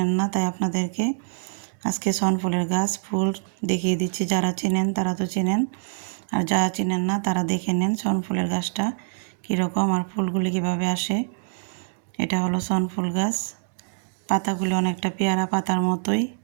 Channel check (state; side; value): silent; left; digital silence